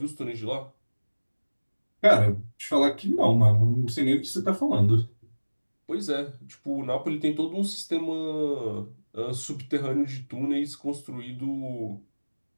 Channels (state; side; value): inverted; both; correlation -1.00